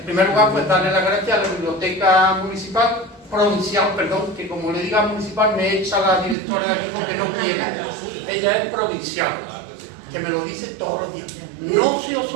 primer lugar, pues darle las gracias a la Biblioteca Municipal, provincial, perdón, que como le diga municipal me echa la directora de aquí porque no quiere. Ella es provincial, que me lo dice todos los días. No se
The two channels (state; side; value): drops out; left; at 6.4 s